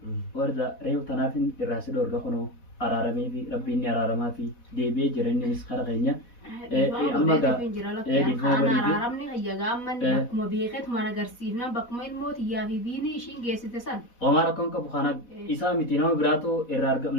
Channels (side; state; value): right; late; 4.1 ms